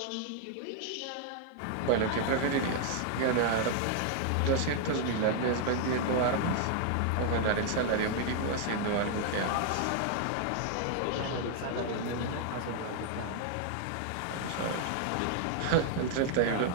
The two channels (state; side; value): different; both; correlation 0.00